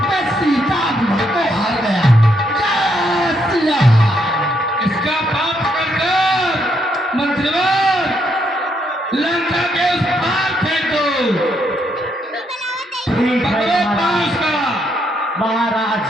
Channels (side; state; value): both; normal; correlation 0.75